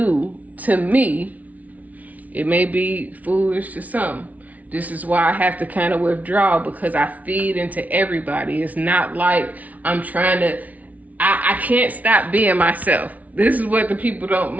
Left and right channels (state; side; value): late; left; 0.072 ms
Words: To me, it may be foolish to some. This is why I have to kind of withdraw, because I feed into everybody. It's not like I'm trying to, I can't stop being myself. This is what